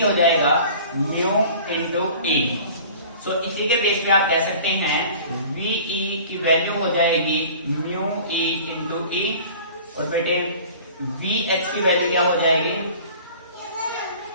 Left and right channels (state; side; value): inverted; both; correlation -0.45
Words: हो जाएगा म्यू इंटू E। सो इसी के बेस पे आप कह सकते हैं VE की वैल्यू हो जाएगी म्यू E इंटू E। और बेटे VH की वैल्यू क्या हो जाएगी,